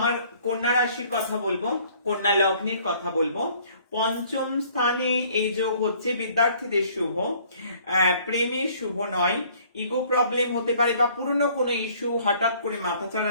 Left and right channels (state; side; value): inverted; both; correlation -0.58